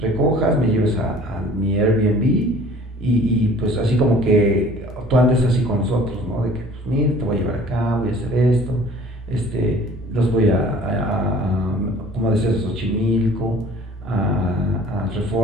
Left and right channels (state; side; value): normal; both; correlation 0.49